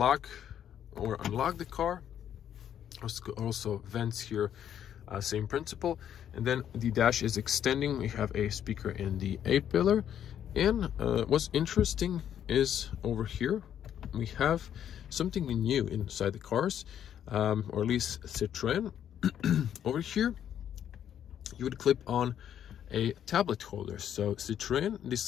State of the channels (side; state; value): right; quieter; 9.8 dB